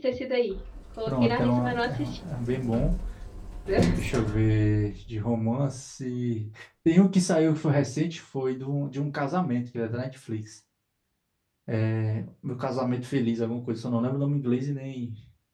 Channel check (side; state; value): both; identical; correlation 1.00